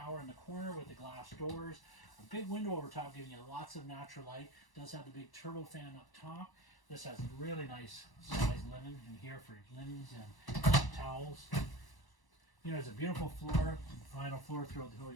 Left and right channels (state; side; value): late; right; 1.1 ms